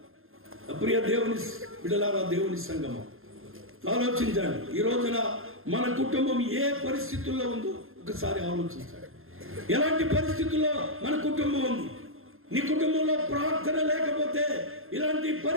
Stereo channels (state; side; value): late; left; 0.60 ms